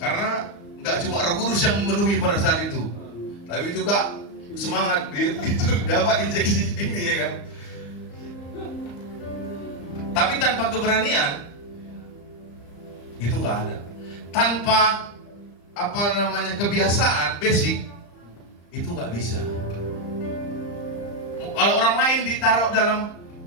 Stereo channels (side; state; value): right; late; 34 ms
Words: Karena nggak cuma Roh Kudus yang memenuhi pada saat itu, tapi juga semangat itu dapat injeksi ini ya kan. Tapi tanpa keberanian itu nggak ada. Tanpa kebiasaan basic itu nggak bisa. Kalau orang lain ditaruh dalam